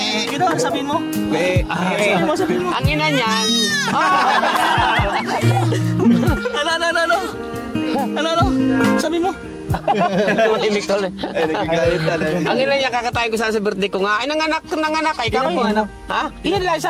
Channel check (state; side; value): identical; both; correlation 1.00